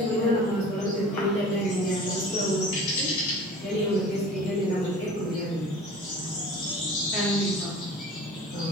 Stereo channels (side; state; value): both; normal; correlation 0.42